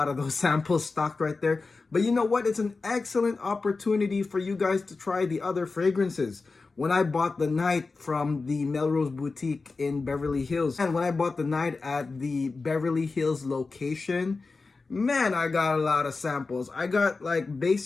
of those samples stocked right there. But you know what? It's an excellent opportunity for you guys to try the other fragrances. When I bought the Night from the Melrose boutique in Beverly Hills, and when I bought the Night at the Beverly Hills location, man, I got a lot of samples. I got like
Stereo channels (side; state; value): right; quieter; 4.0 dB